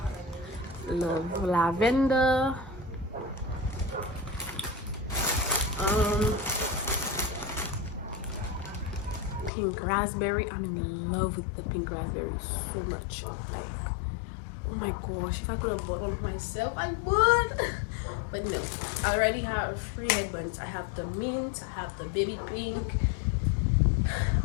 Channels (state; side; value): drops out; right; at 9.5 s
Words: lavender. Pink raspberry. I'm in love with the pink raspberry so much. Like, oh my gosh, if I could have bought one of myself, I would. But no, I already have 3 headbands. I have the mint, I have the baby pink,